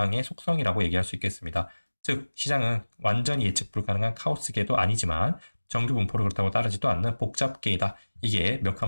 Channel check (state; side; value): inverted; both; correlation -1.00